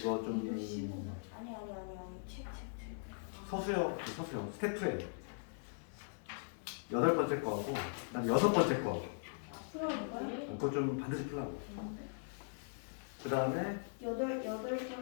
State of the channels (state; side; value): silent; right; digital silence